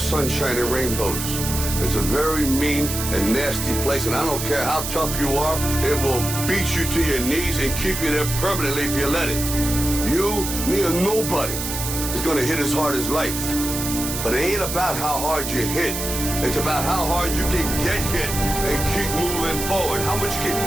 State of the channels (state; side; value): noise; right; hiss, 5 dB below the sound